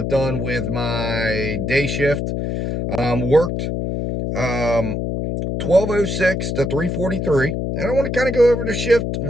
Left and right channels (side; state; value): left; noise; hum, 2 dB below the sound